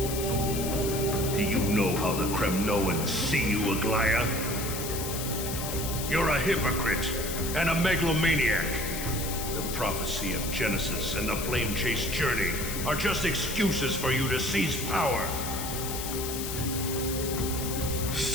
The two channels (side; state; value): left; noise; hiss, 6 dB below the sound